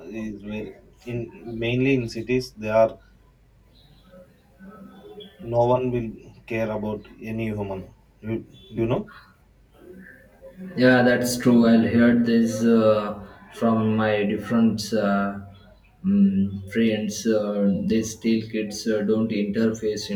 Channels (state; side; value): identical; both; correlation 1.00